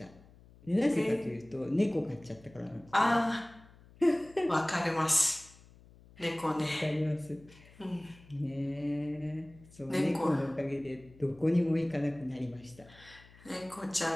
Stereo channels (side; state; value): left; noise; hum, 24 dB below the sound